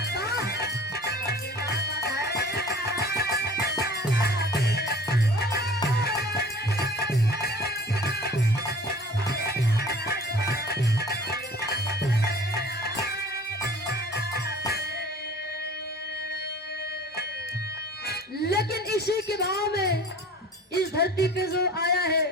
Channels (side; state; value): both; normal; correlation 0.45